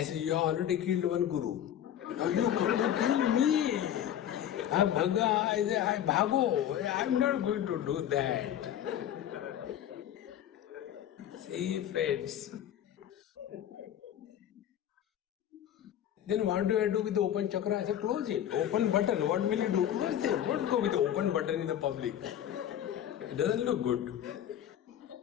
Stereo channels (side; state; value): right; quieter; 10.6 dB